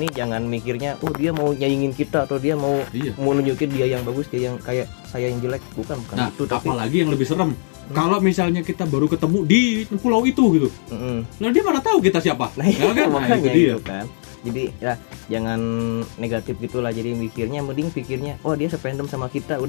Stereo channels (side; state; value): right; silent; 62 dB below the other